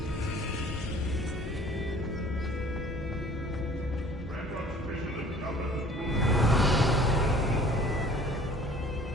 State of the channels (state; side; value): normal; both; correlation 0.51